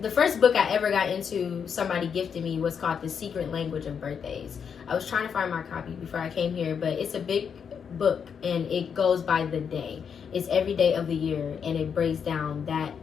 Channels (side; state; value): right; quieter; 7.0 dB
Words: the first book I ever got into, somebody gifted me, was called The Secret Language of Birthdays. I was trying to find my copy before I came here, but it's a big book and it goes by the day. It's every day of the year and it breaks down that